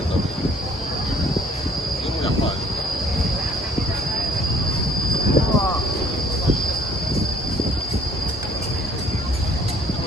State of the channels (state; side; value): normal; both; correlation 0.59